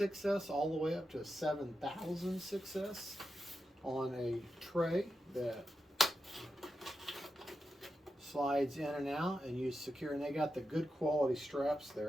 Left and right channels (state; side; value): normal; both; correlation 0.89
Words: all the way up to a 7000 6S on a tray that slides in and out, and you secure, and they got the good quality straps